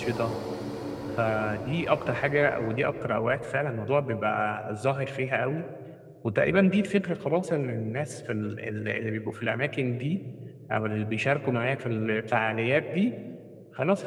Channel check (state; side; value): identical; both; correlation 1.00